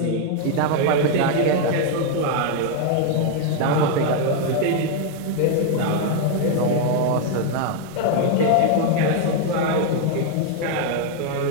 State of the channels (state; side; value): different; both; correlation 0.00